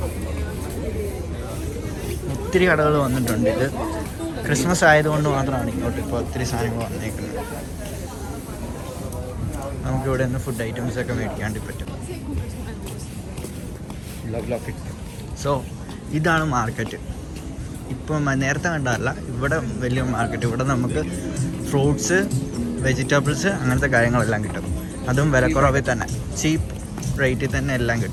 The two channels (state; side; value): identical; both; correlation 1.00